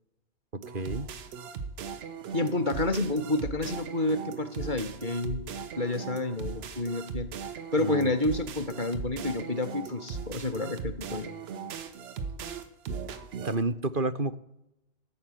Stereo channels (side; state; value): left; late; 2.9 ms